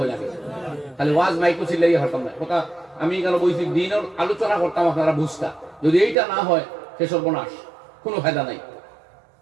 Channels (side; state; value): left; drops out; at 6.2 s